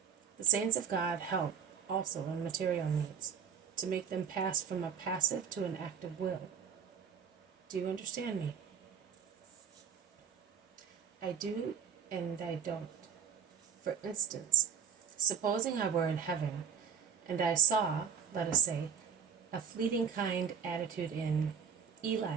The saints of God help also in material needs, to make them pass from a passive to an active will. Do you understand me? I do and I don't. For instance, supposing I were in heaven and I saw, let us say, a fleeting kind attitude in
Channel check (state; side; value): quieter; left; 7.2 dB